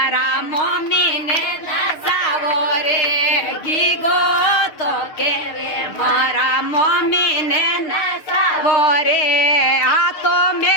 મમ્મી ને નસાવો રે ગીગો તો કેવે મારા મમ્મી ને નસાવો રે આ તો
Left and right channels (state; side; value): late; right; 6.6 ms